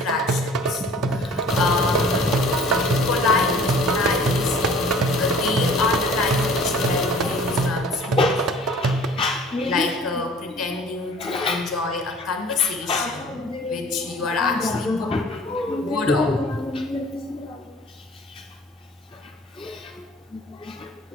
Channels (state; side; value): normal; both; correlation 0.49